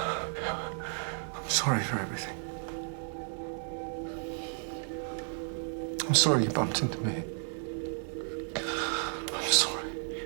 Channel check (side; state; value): left; silent; 56 dB below the other